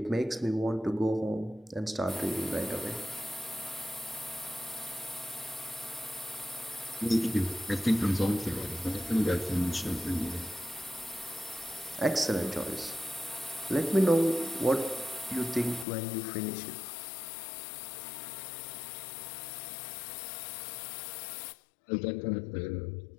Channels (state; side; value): drops out; right; at 15.9 s